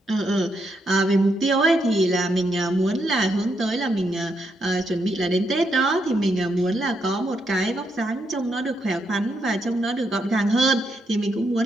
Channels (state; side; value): normal; both; correlation 0.79